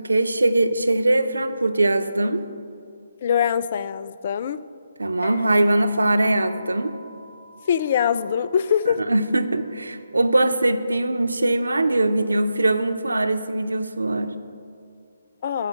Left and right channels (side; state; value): both; inverted; correlation -0.86